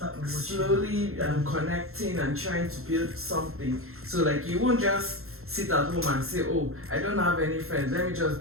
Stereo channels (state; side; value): late; left; 0.62 ms